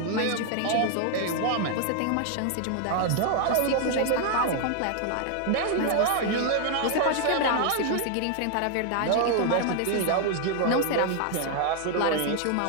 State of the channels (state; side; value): different; both; correlation 0.00